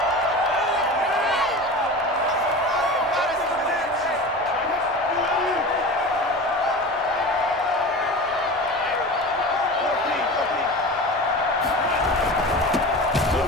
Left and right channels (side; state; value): both; normal; correlation 0.32